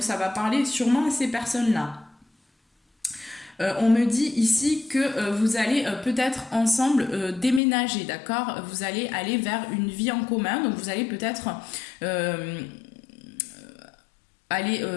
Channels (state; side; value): drops out; right; at 7.6 s